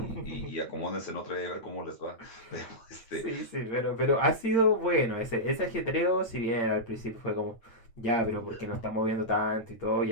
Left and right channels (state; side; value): late; right; 8.8 ms